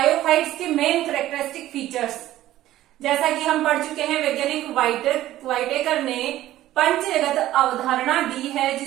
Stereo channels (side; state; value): left; quieter; 14.3 dB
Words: के मेन कैरेक्टरिस्टिक फीचर्स जैसा कि हम पढ़ चुके हैं, वैज्ञानिक वाइटेकर ने पंचजगत अवधारणा दी है,